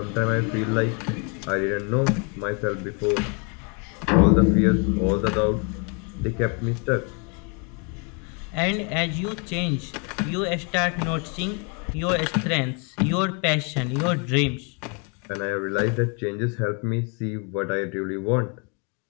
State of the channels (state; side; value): quieter; right; 35.7 dB